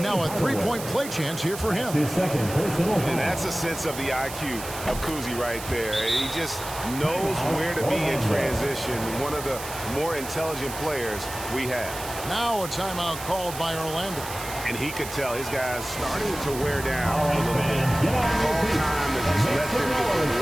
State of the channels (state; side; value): noise; right; hiss, 11 dB below the sound